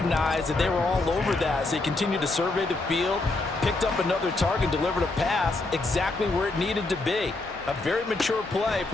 that they were all over that. So he continued to survey the field, picked up another target, delivered a pass exactly where it needed to be. A very mature play for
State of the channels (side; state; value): right; quieter; 3.1 dB